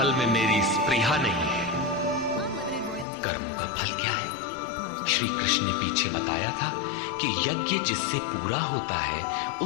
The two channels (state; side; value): drops out; right; at 3.1 s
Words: में मेरी स्पृहा नहीं है। कर्मों का फल क्या है? श्री कृष्ण ने पीछे बताया था कि यज्ञ जिससे पूरा होता है